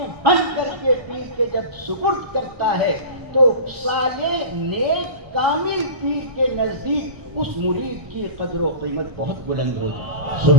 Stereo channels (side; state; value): left; late; 1.6 ms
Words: بند کر کے پیر کے جب سپرد کرتا ہے تو صالح نیک کامل پیر کے نزدیک اس مرید کی قدر و قیمت بہت بلند ہوتی ہے۔